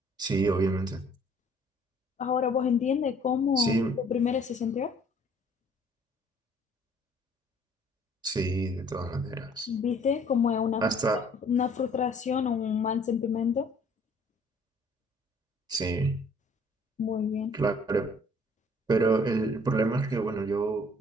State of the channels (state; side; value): normal; both; correlation 0.57